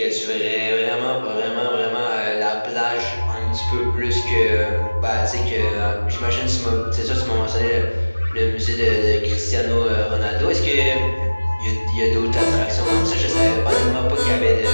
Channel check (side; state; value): both; inverted; correlation -1.00